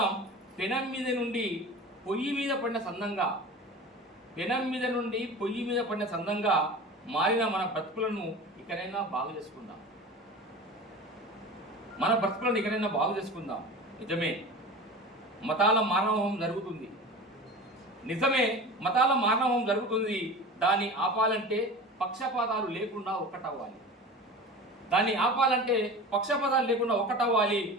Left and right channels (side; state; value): both; normal; correlation 0.34